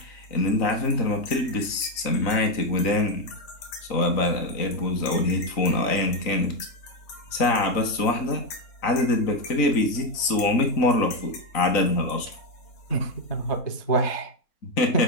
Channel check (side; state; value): right; late; 3.9 ms